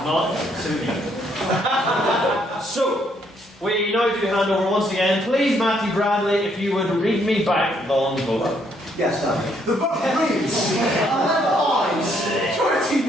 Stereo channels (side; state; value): both; normal; correlation 0.70